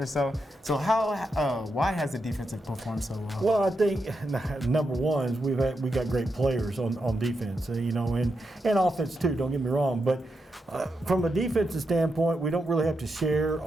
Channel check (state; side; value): normal; both; correlation 0.85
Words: so. So why has the defense performed so well? Well, I think number one is we got great players on defense, and offense too. Don't get me wrong, but from a defensive standpoint, we don't really have to share